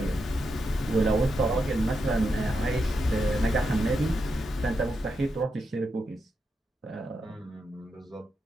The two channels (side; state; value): both; normal; correlation 0.85